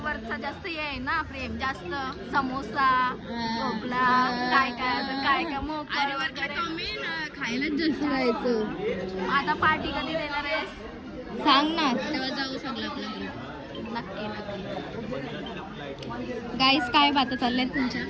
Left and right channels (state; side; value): identical; both; correlation 1.00